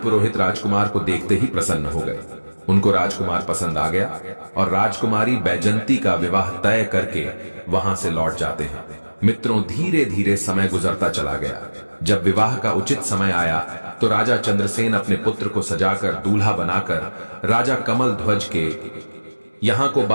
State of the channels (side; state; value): both; inverted; correlation -1.00